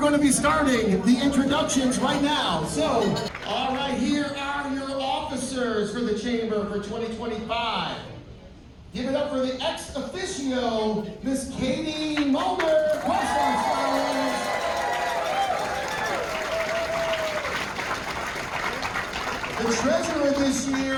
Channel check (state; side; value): identical; both; correlation 1.00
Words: to be starting the introductions right now. So, all right, here are your officers for the Chamber for 2025. Give it up for the ex officio, Miss Katie Muellner, Question Scholars. The treasurer this